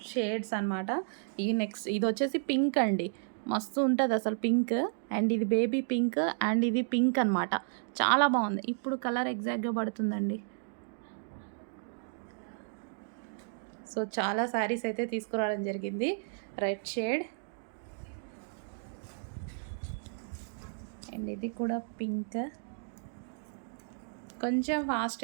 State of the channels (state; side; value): silent; left; digital silence